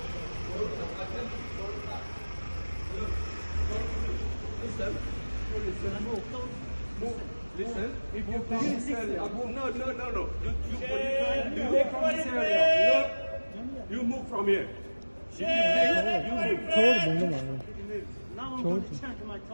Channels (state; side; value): inverted; both; correlation -1.00